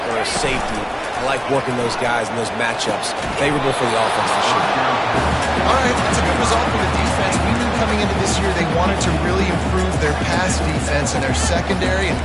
or a safety. I like working those guys in those matchups. Favorable for the offense for sure. All right, that's a good result for the defense. We knew coming into this year they wanted to really improve their pass defense and their secondary and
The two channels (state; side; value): identical; both; correlation 1.00